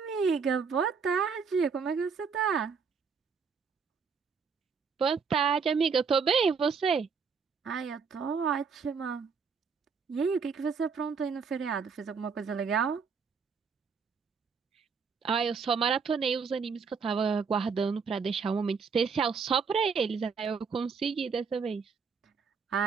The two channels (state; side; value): quieter; left; 5.7 dB